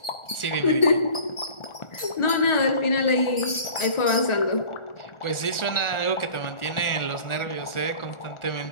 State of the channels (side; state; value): right; late; 1.4 ms